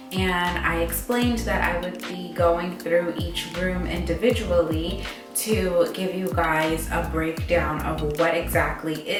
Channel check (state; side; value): identical; both; correlation 1.00